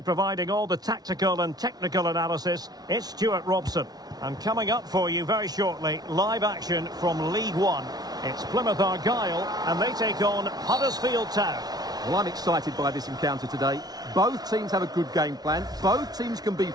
providing all the tactical and technical analysis, it's Stuart Robson. And coming up for you very shortly, live action from League One. It's Plymouth Argyle, and they take on Huddersfield Town. Well, I'm excited by this encounter today. Both teams have a good game plan, both teams can be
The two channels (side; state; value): left; late; 0.19 ms